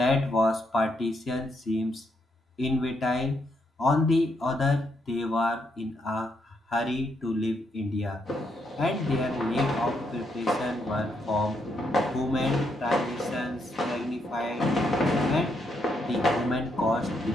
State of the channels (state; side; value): normal; both; correlation 0.78